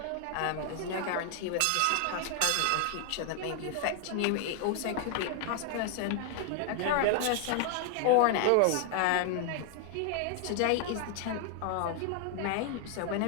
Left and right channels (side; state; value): both; different; correlation 0.00